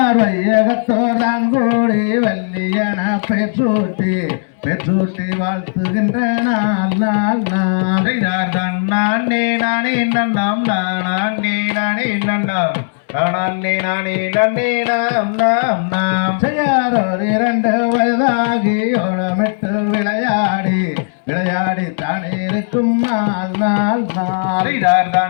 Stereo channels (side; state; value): right; silent; digital silence